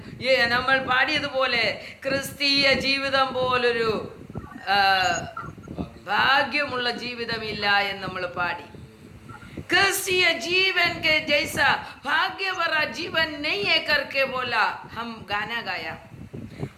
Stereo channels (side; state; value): both; identical; correlation 1.00